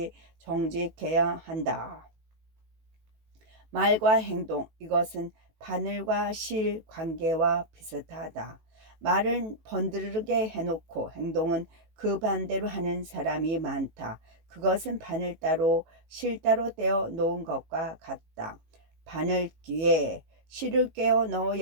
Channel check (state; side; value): late; left; 18 ms